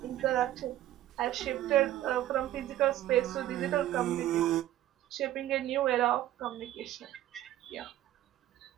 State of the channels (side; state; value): left; quieter; 13.5 dB